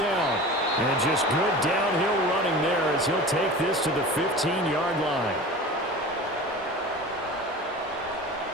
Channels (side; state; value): both; normal; correlation 0.36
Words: And just good downhill running there as he'll take this to the 15-yard line.